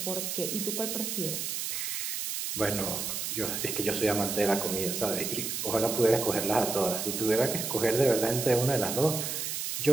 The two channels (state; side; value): noise; right; hiss, 3 dB below the sound